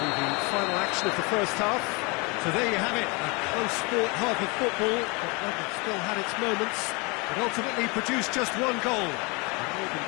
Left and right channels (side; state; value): right; quieter; 28.9 dB